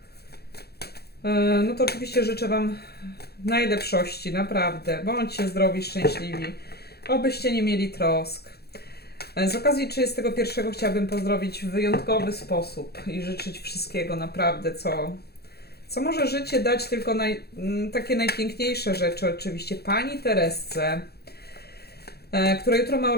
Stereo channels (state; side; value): late; right; 0.46 ms